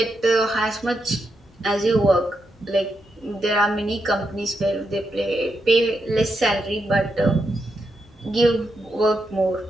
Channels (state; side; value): normal; both; correlation 0.84